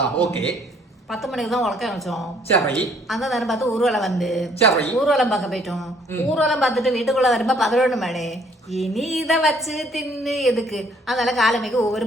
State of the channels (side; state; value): both; normal; correlation 0.63